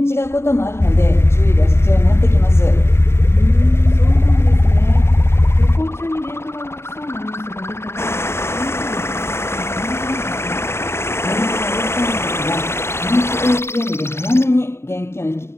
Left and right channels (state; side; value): late; right; 0.12 ms